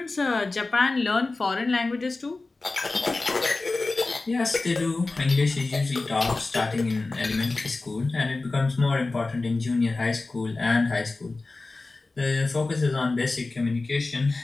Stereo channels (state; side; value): quieter; right; 3.4 dB